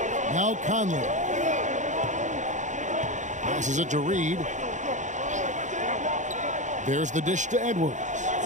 Now Conley. Passes it to Reed. There's the dish to Edwards.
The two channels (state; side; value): late; left; 0.35 ms